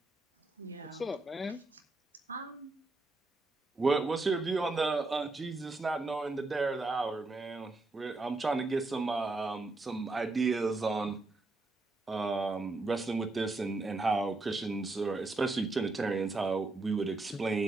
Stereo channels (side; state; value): left; quieter; 3.2 dB